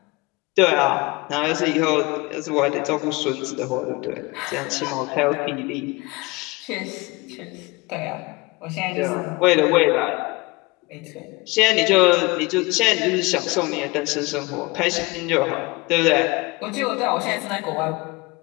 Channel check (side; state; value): right; quieter; 24.0 dB